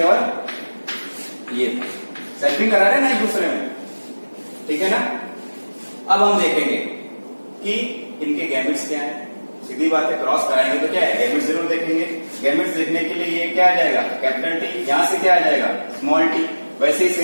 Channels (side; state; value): both; inverted; correlation -1.00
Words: और ये थे, सेल्फिंग करा रहे ना एक दूसरे में, ठीक है ना। अब हम देखेंगे कि इनके गैमेट्स क्या है। सीधी बात है, क्रॉस कराएंगे तो क्या है, गैमेट्स जरूर देखेंगे। गैमेट्स देखने के लिए ये क्या आ जाएगा, कैपिटल टी, यहां से क्या आ जाएगा, स्मॉल टी। वैसे ही